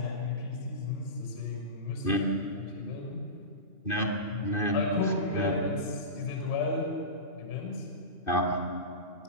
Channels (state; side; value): late; right; 2.6 ms